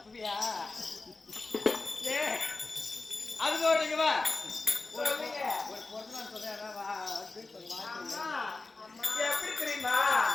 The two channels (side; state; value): right; quieter; 3.5 dB